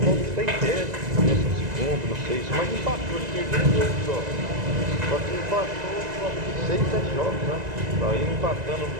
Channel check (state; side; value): late; left; 1.9 ms